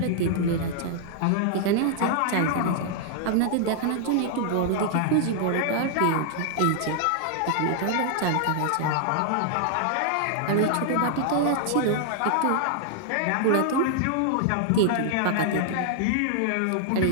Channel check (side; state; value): both; different; correlation -0.01